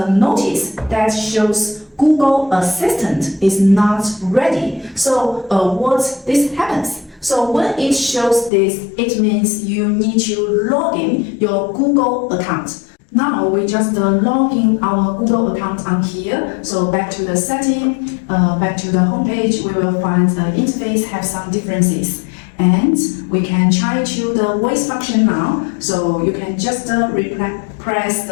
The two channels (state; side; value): drops out; right; at 8.5 s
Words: notice that shows Google Assistant is not ready. So what this happens? So when it shows this, it means you need to log in your Google account. Now we just log in our Google account on here. So back to the setting, back to the homepage, we will find the interface have some differences. And we can try to the voice function now. So you can just press